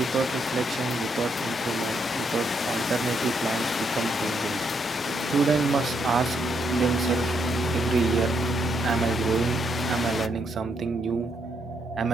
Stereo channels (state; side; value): normal; both; correlation 0.76